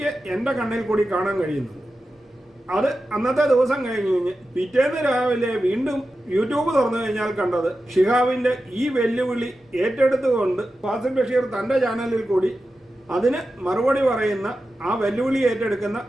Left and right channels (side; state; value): both; normal; correlation 0.92